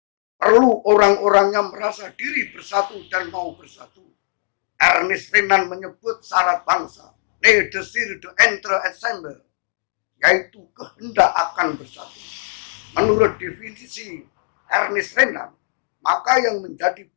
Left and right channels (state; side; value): silent; right; digital silence